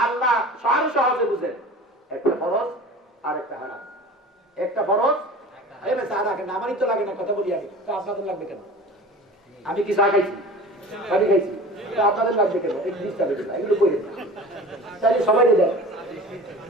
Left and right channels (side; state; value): both; normal; correlation 0.38